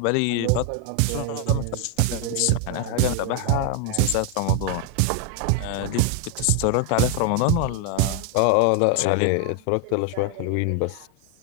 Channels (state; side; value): different; both; correlation 0.01